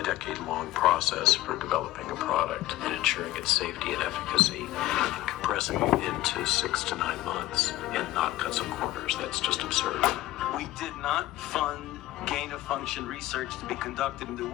decade-long process for developing a product and ensuring its safety and efficacy and compressing it into 6 to 9 months and not cut some corners. That's just absurd. We did not fund gain-of-function research to be conducted in the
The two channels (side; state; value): right; quieter; 16.0 dB